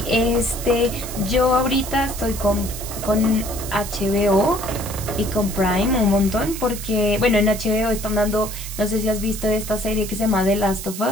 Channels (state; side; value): noise; right; hiss, 10 dB below the sound